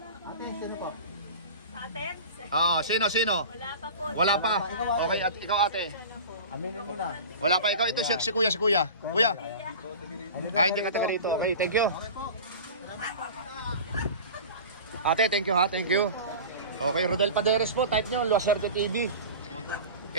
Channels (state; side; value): inverted; both; correlation -0.35